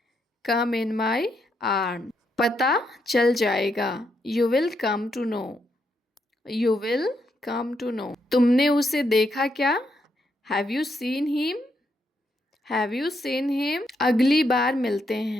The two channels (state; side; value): normal; both; correlation 0.79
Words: Come in my arm. पता चल जाएगा। You will come to know. You will come to know. तुमने उसे देखा क्या? Have you seen him? Have you seen him? अगली बार मिलते